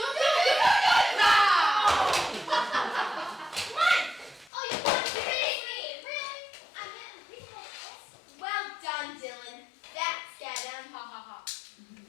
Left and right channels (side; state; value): right; drops out; at 4.5 s